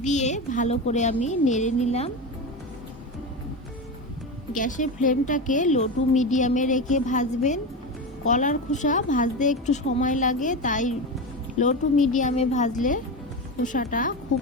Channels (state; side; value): normal; both; correlation 0.20